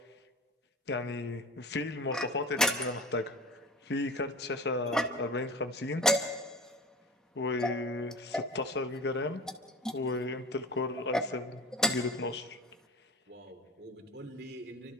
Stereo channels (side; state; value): both; normal; correlation 0.38